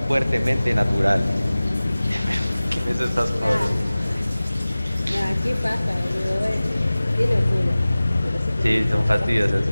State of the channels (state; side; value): inverted; both; correlation -0.98